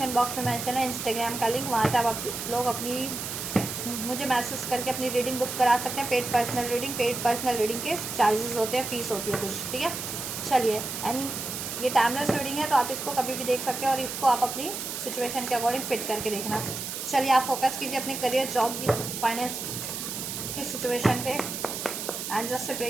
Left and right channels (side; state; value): right; noise; hiss, 5 dB below the sound